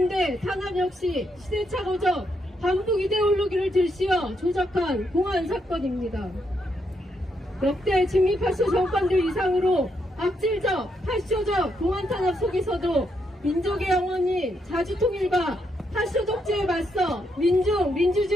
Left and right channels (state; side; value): normal; both; correlation 0.78